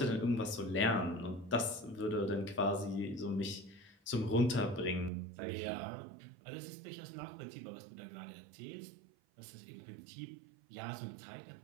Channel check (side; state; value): left; drops out; at 5.1 s